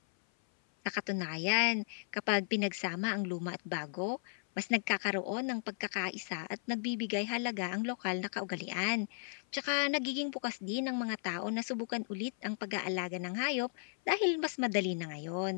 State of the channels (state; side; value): silent; right; 54 dB below the other